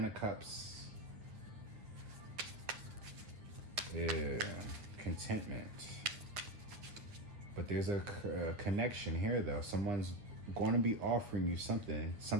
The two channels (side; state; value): left; late; 9.3 ms